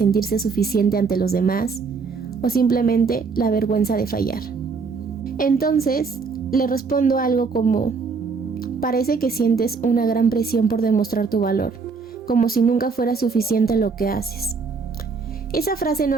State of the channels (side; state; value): left; quieter; 4.9 dB